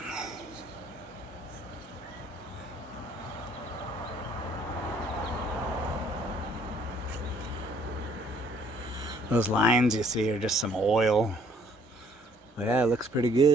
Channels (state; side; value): normal; both; correlation 0.61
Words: Those lines you see are just some oil. But yeah, it looks pretty